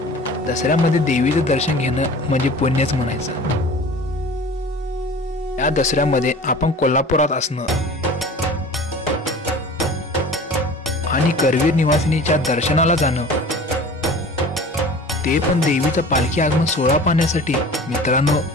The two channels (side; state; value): both; normal; correlation 0.41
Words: दसऱ्यामध्ये देवीचं दर्शन घेणं म्हणजे पुण्यच म्हणायचं। या दसऱ्यामध्ये आपण कोल्हापुरात असणं आणि करवीर निवासिनीच्या दर्शनाला जाणं, ते पण देवीचं पालखी आगमन सोहळा पाहण्यासाठी, मित्रांनो